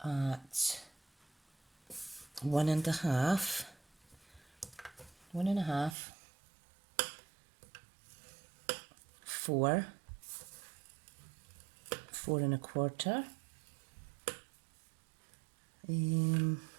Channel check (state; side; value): drops out; left; at 6.0 s